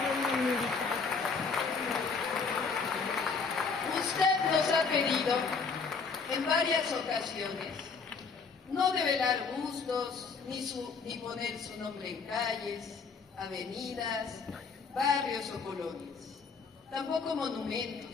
hablando de militar. Usted nos ha pedido en varias ocasiones no develar gustos ni poner su nombre en calles, avenidas, barrios o colonias, tampoco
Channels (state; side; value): quieter; right; 5.0 dB